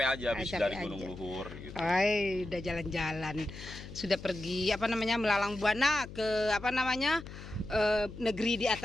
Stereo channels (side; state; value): left; noise; hum, 13 dB below the sound